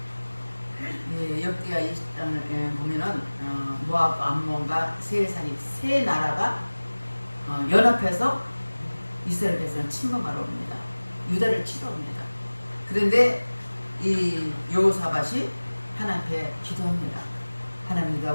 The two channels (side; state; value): both; inverted; correlation -1.00